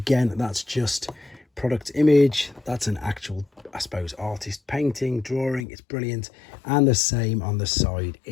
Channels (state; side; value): drops out; right; at 5.7 s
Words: that's just product image. That's an actual, I suppose, artist painting, drawing. It's brilliant. And the same on the side.